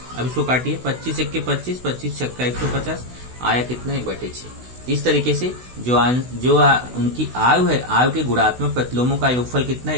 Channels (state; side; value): late; left; 16 ms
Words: अब इसको काटिए, 25 1 के 25, 25 छक्का 150, आया कितना? 1/6। इस तरीके से जो उनकी आयु है, आयु के गुणात्मक प्रतिलोमों का योगफल कितना?